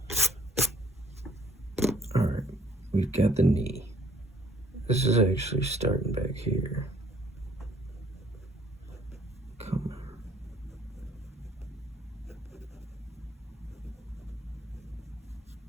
All right, we've got the knee. This is actually starting back here. Come on.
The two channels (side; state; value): both; normal; correlation 0.61